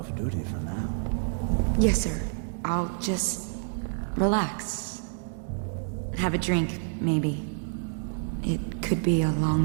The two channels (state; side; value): silent; left; digital silence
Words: duty for now. Yes, sir. I'll just relax. Have a drink, maybe. It could be a